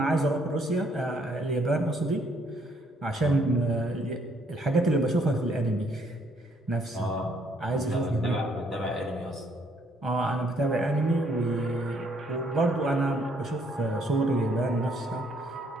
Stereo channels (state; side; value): normal; both; correlation 0.68